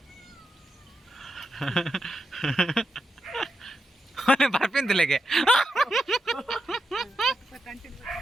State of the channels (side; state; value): both; normal; correlation 0.86